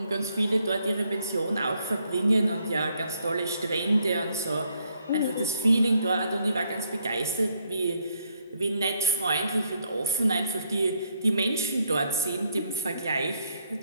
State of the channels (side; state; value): both; inverted; correlation -0.73